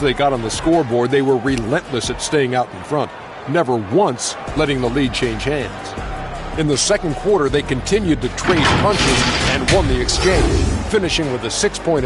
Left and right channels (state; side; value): identical; both; correlation 1.00